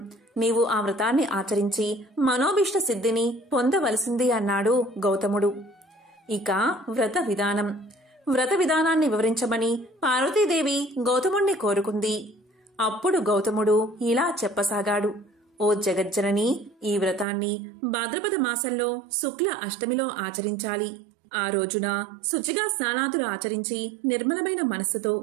నీవు ఆ వ్రతాన్ని ఆచరించి మనోభీష్ట సిద్ధిని పొందవలసింది అన్నాడు గౌతముడు. ఇక వ్రత విధానాన్ని వివరించమని పార్వతీదేవి గౌతముణ్ణి కోరుకుంది. అప్పుడు గౌతముడు ఇలా చెప్పసాగాడు: ఓ జగజ్జనని, ఈ వ్రతాన్ని భాద్రపద మాసంలో శుక్ల అష్టమిలో ఆచరించాలి. ఆ రోజున శుచిగా స్నానాదులు ఆచరించి నిర్మలమైన మనస్సుతో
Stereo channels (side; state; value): left; drops out; at 17.2 s